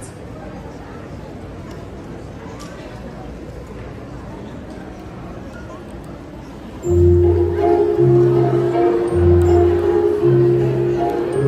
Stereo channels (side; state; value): both; identical; correlation 1.00